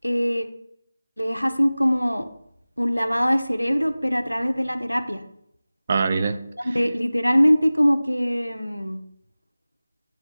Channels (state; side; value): inverted; both; correlation -0.98